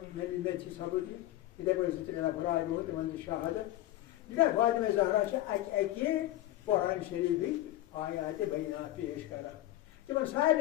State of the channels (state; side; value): quieter; right; 14.9 dB